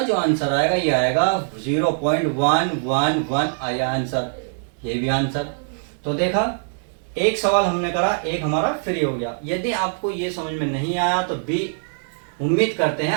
जो आंसर आएगा ये आएगा 0.111 आया आंसर, ये भी आंसर। तो देखा एक सवाल हमने करा, एक हमारा फ्री हो गया। यदि आपको ये समझ में नहीं आया तो भी उम्मीद करते हैं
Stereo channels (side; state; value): left; silent; digital silence